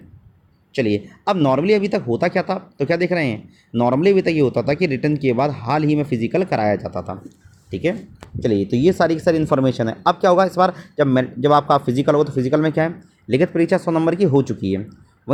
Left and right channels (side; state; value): both; identical; correlation 1.00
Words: चलिए। अब नॉर्मली अभी तक होता क्या था, तो क्या देख रहे हैं? नॉर्मली अभी तक ये होता था कि रिटर्न के बाद हाल ही में फिजिकल कराया जाता था। ठीक है, चलिए। तो ये सारी की सारी इन्फॉर्मेशन है। अब क्या होगा इस बार? जब आपका फिजिकल हो, तो फिजिकल में क्या है? लिखित परीक्षा 100 नंबर की हो चुकी है,